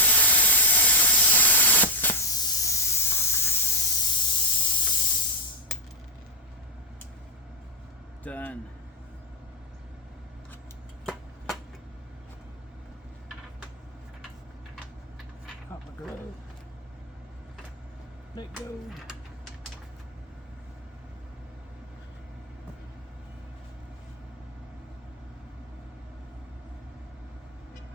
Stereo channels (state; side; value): normal; both; correlation -0.06